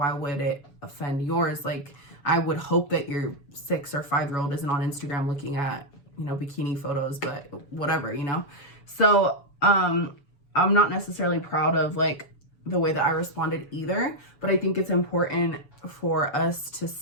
would it offend yours? Like, I would hope that your 6 or 5-year-old isn't on Instagram looking at, you know, bikini photos, but whatever, you know? So, I'm not necessarily proud of like the way that I responded either, but I think it's important for us to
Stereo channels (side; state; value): right; late; 7.0 ms